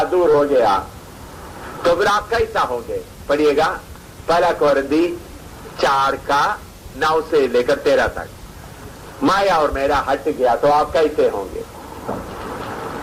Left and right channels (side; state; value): both; identical; correlation 1.00